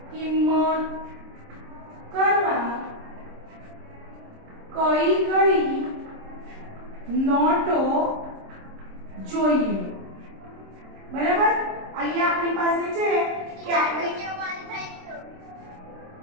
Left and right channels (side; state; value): left; late; 26 ms